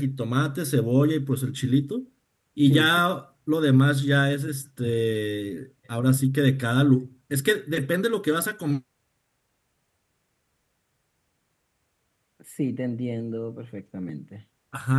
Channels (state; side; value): identical; both; correlation 1.00